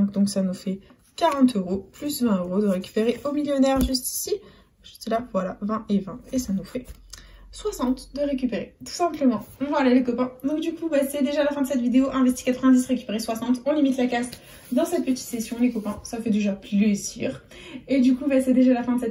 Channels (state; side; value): identical; both; correlation 1.00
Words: Donc ça nous fait 40 €. Plus 20 € de récupérer au millionnaire juste ici. Juste là, voilà, 20 et 20. Et ça nous fait 60 de récupérer, tout simplement. Voilà les copains. Donc du coup, bah, c'est déjà la fin de cette vidéo. Investi 90, récupérer 60. On limite la casse dans cette petite session, les copains. Ça fait déjà plaisir. Et du coup, bah, c'est déjà la fin de